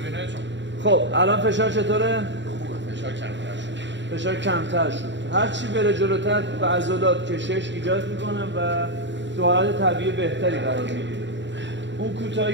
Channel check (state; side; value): late; left; 0.53 ms